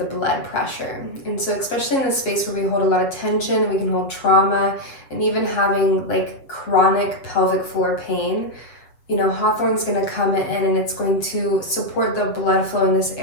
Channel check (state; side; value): late; right; 7.6 ms